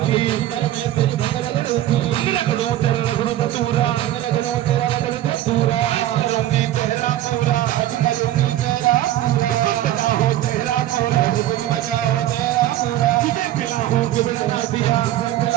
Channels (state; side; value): quieter; left; 13.4 dB